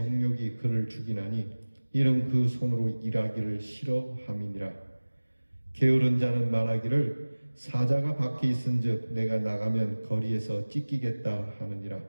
그를 죽이나니 이는 그 손으로 일하기를 싫어함이니라. 게으른 자는 말하기를 사자가 밖에 있은즉 내가 나가면 거리에서 찢기겠다 하느니라.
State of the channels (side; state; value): both; inverted; correlation -1.00